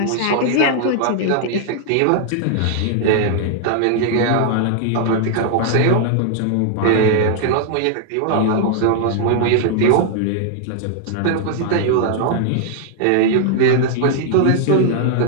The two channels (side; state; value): both; different; correlation 0.00